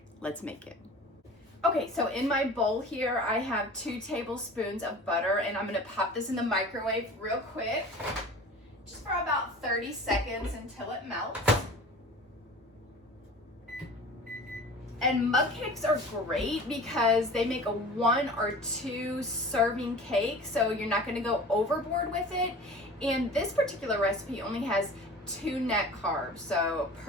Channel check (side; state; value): both; normal; correlation 0.40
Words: Let's make it. Okay, so in my bowl here, I have 2 tablespoons of butter, and I'm gonna pop this in the microwave real quick, just for about 30 seconds until it melts. And mug cakes are great because they make a 1 or 2 serving cake, so you're not gonna go overboard with it. And this particular recipe only has 2 net carbs, so